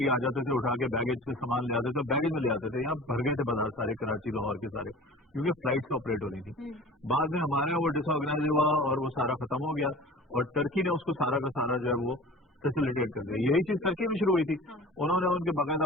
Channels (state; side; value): normal; both; correlation 0.40